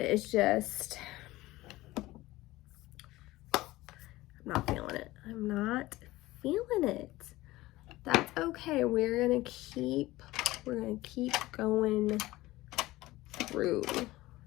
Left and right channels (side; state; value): right; quieter; 18.1 dB